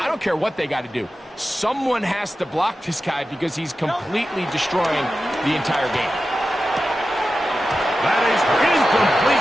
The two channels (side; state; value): both; normal; correlation 0.93